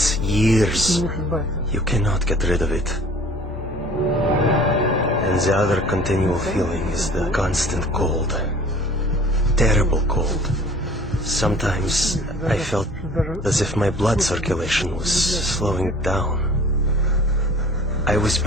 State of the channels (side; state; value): both; normal; correlation 0.49